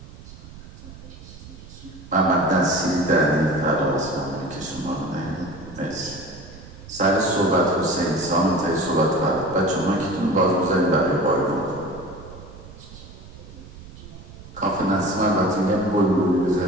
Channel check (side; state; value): right; noise; rumble, 17 dB below the sound